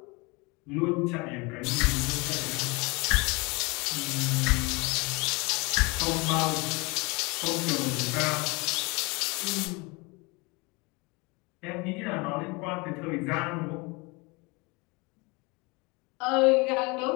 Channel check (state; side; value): quieter; right; 27.1 dB